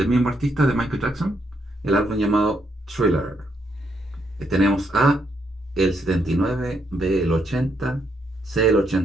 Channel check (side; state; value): both; normal; correlation 0.77